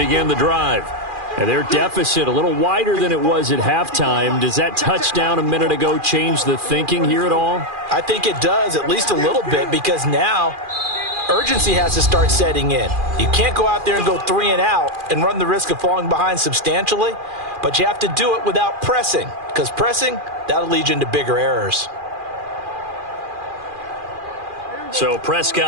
the drive. And their deficit a little wider than it was at halftime. Does that touchdown a minute ago change the thinking here at all? I think it does, at least a little bit, because now urgency has to start setting in. You can't go out there and go 3 and out and run the risk of falling behind substantially, but you have to do it without pressing, because pressing, that'll lead you into bigger errors. So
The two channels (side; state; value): left; late; 2.4 ms